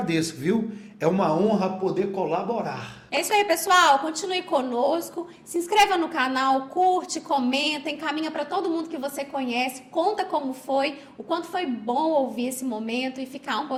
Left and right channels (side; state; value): both; identical; correlation 1.00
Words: viu? É uma honra poder colaborar. É isso aí, pessoal. Continue conosco. Se inscreva no canal, curte, comenta, encaminha para todo mundo que você conhece. Conta como foi, o quanto foi bom ouvir esse momento e ficar um